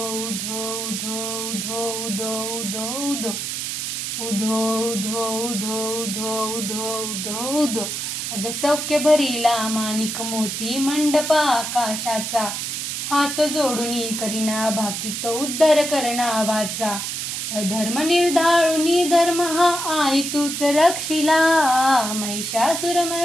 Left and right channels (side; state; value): right; noise; hiss, 4 dB below the sound